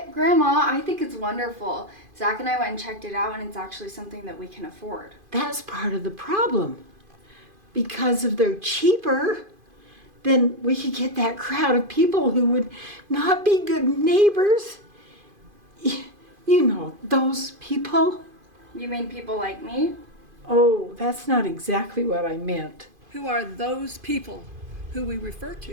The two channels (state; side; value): late; left; 2.5 ms